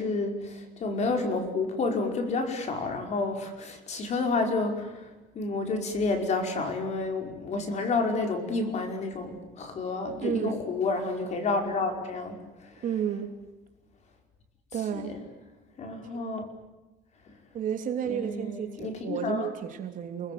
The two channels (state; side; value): normal; both; correlation 0.37